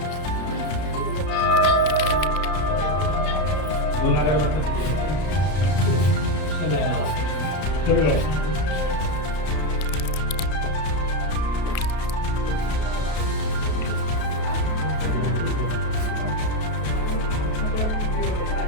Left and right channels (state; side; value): late; right; 33 ms